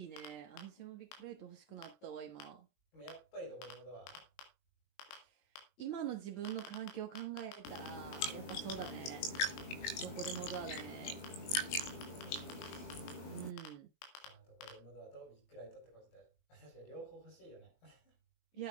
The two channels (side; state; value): right; late; 20 ms